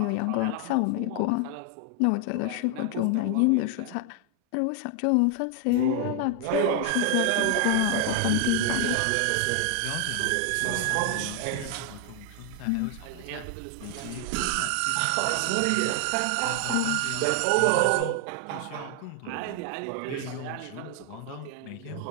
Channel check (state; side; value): different; both; correlation 0.00